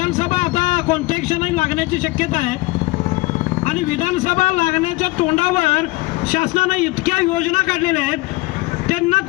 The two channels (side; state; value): right; quieter; 22.0 dB